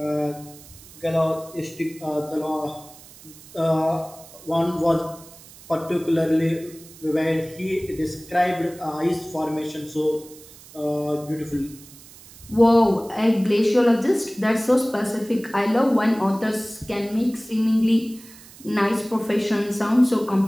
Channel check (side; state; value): right; noise; hiss, 20 dB below the sound